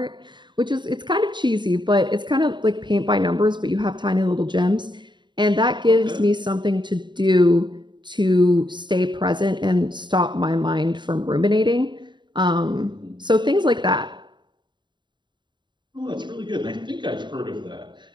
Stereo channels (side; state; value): left; late; 0.22 ms